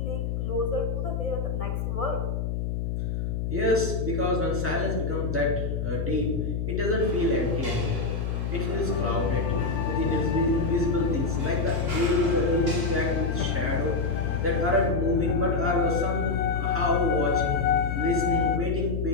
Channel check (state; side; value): noise; left; hum, 1 dB below the sound